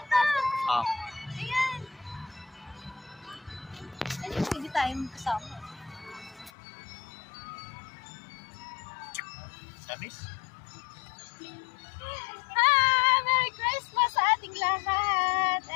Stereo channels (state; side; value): drops out; right; at 6.5 s